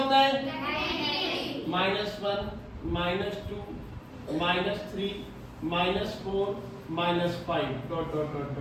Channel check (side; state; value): both; identical; correlation 1.00